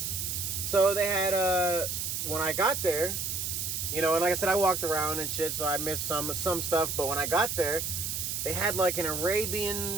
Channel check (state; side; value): noise; right; hiss, 2 dB below the sound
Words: So they had, when I got there, you know, and like I said, I walked around and shit, so I missed some stuff. But when I got there, they had like an